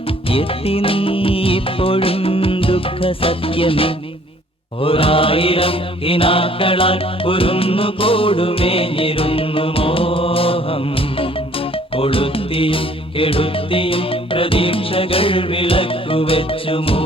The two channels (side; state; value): both; normal; correlation 0.58